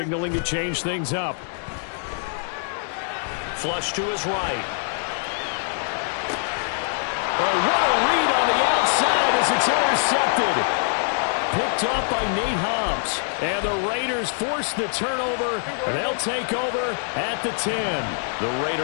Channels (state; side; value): silent; right; digital silence